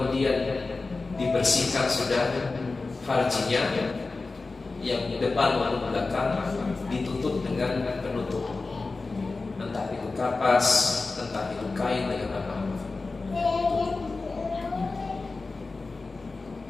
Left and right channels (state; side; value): quieter; right; 3.7 dB